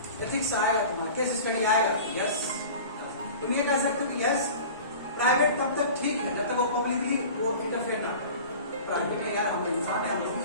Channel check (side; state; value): both; inverted; correlation -0.39